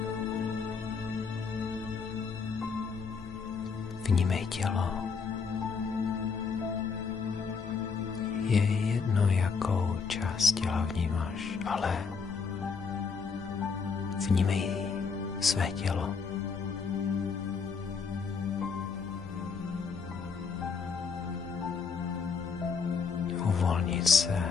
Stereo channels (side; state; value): right; quieter; 5.4 dB